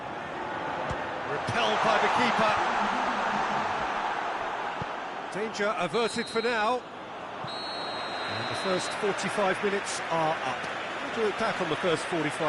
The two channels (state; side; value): identical; both; correlation 1.00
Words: Repelled by the keeper. Danger averted for now. And the first 45 minutes are up. What do you look back on the first